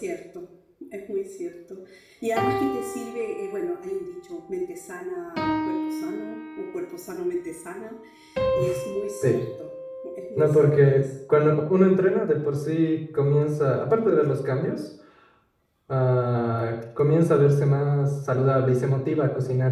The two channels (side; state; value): both; identical; correlation 1.00